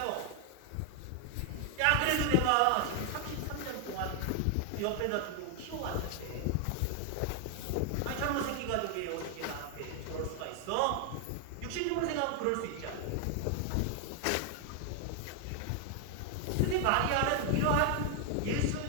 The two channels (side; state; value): both; different; correlation 0.00